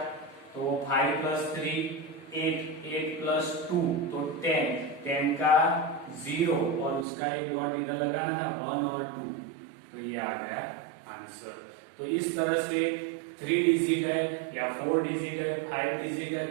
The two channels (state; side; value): drops out; left; at 7.1 s